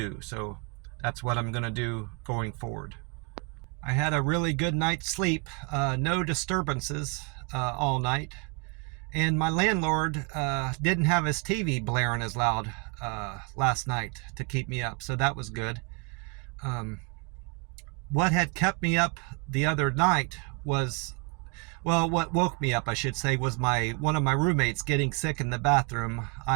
So that's what I'm going to do going forward. I had a really good night's sleep, no disturbances all night, and my landlord didn't have his TV blaring as loud last night to keep me up, so that was good. What had kept me up the other night was, what woke me up, I should say, was one of my roommates getting sick in the bathroom.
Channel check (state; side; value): quieter; left; 32.6 dB